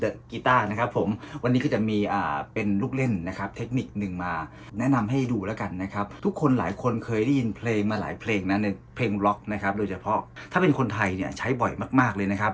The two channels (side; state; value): both; identical; correlation 1.00